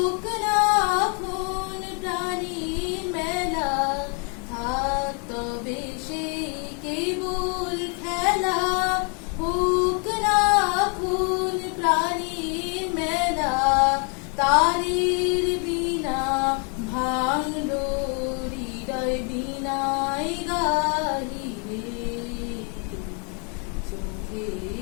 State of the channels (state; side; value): quieter; right; 37.8 dB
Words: না এখন প্রাণীর মেলা থাক তবে সেই কেবল খেলা হোক না এখন প্রাণীর মেলা তারের বিনা ভাঙলো হৃদয় বিনায় গাহিরে